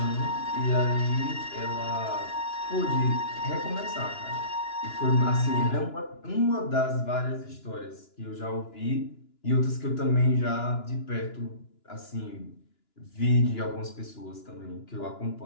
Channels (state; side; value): late; right; 2.9 ms